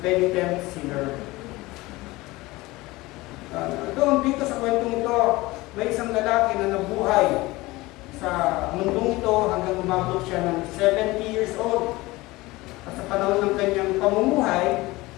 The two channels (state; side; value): quieter; right; 20.6 dB